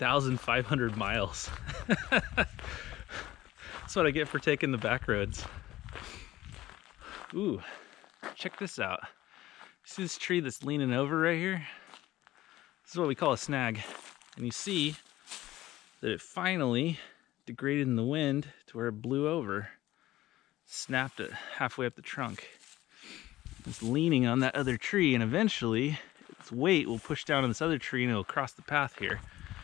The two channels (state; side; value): quieter; right; 15.7 dB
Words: miles. That's what I get for taking the back roads. Ooh, check this out. See this tree that's leaning over right here? This is what we call a snag. And you see that it finally degraded in the wind to where it blew over, snapped it halfway up the trunk. It's leaning on that other tree, and eventually its weight will push down on this other tree and it'll cross the path here.